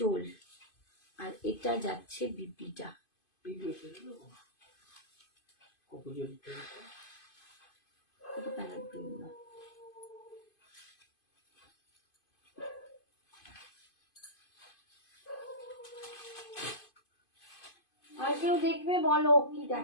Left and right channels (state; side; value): late; right; 2.5 ms